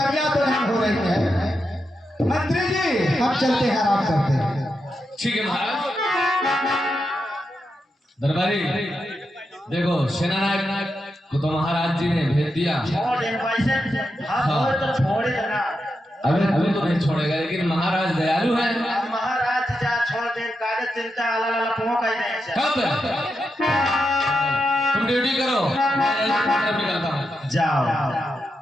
तो नहीं हो रही है। मंत्री जी हम चलते हैं, आराम करते हैं। ठीक है महाराज। दरबारी देखो, सेनानायक को तो महाराज जी ने भेज दिया। छोड़ दे वैसे। हाँ बोल तो छोड़े देना। अभी तो नहीं छोड़ेगा, लेकिन महाराज दयालु है। अब महाराज जा छोड़ दे, कागज चिंता अला पों कह दे। कब तुम ड्यूटी करो, मैं तरफ निकलता हूँ। जाओ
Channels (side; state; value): both; normal; correlation 0.86